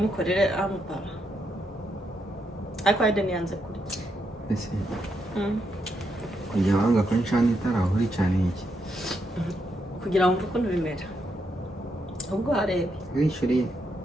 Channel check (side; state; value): both; normal; correlation 0.80